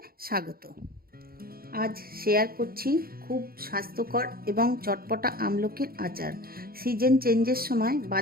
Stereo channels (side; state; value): left; late; 0.43 ms